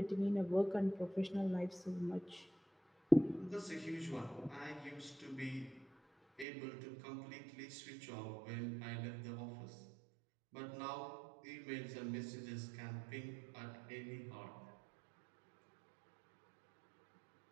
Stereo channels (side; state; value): left; drops out; at 6.5 s